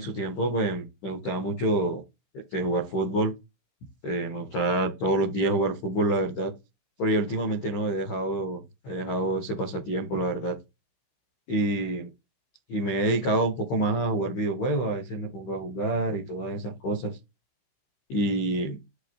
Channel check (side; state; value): right; late; 15 ms